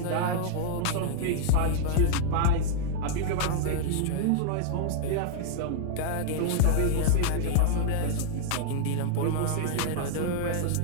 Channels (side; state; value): both; different; correlation -0.01